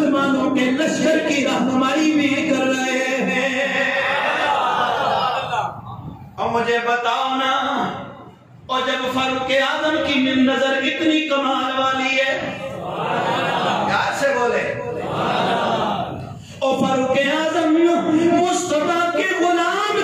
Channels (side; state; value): both; identical; correlation 1.00